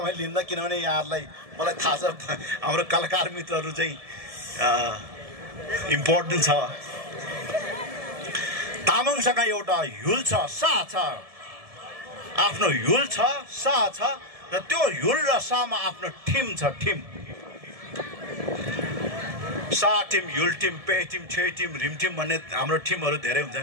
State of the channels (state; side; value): late; left; 1.7 ms